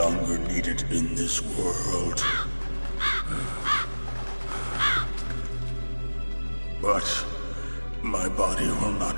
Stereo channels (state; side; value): inverted; both; correlation -1.00